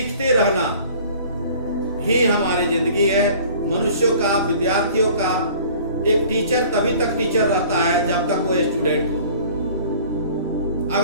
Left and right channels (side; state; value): both; inverted; correlation -0.49